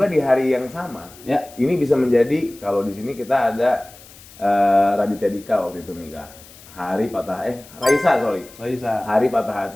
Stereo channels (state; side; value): noise; left; hiss, 21 dB below the sound